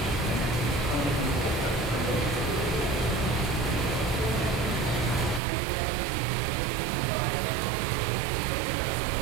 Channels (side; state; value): left; drops out; at 5.4 s